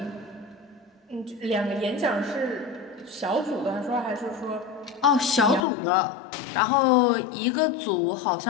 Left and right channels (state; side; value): drops out; right; at 5.7 s